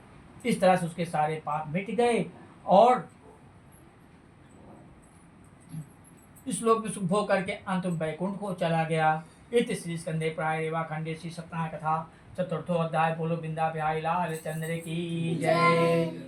इस तरह से उसके सारे पाप मिट गए और इस लोक में सुख भोग करके अंत में वैकुंठ को चला गया। इति श्री स्कंदे प्राय रेवा खंडे श्री सत्यनारायण कथा चतुर्थो अध्याय। बोलो बिंदा बिहारी लाल चंद्र की जय।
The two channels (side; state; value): both; identical; correlation 1.00